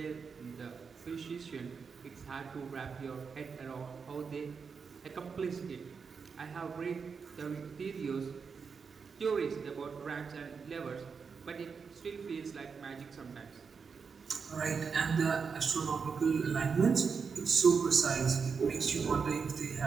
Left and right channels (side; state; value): left; quieter; 5.6 dB